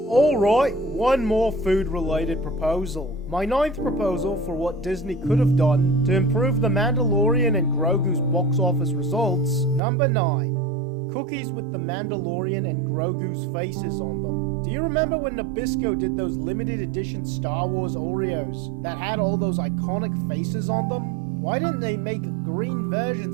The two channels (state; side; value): drops out; left; at 9.8 s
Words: Alright, one more food-related proposal. My 9th proposal for what Disney could have done to improve The Mandalorian and Grogu's box office results. Number 9. Cookies with The Mandalorian and Grogu's faces on them. Do you remember when Nabisco did those limited edition Star Wars Oreos that had all those iconic faces on them? Why didn't they make green